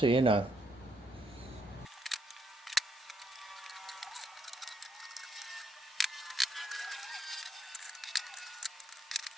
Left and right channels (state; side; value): normal; both; correlation 0.75